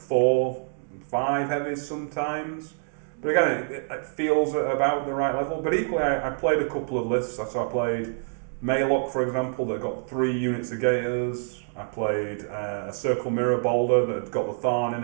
5 heavies sometimes. But again, it feels about the right level. But equally, I played a couple of lists. So I played Maylock, for example, that got 3 units of Gators. I played a Circle Mirror Boulder that had got the Tharn in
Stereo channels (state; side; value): silent; left; digital silence